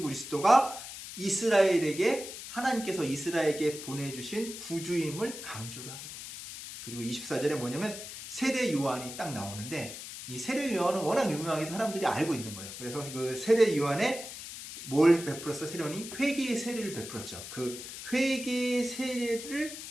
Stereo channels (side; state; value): left; noise; hiss, 10 dB below the sound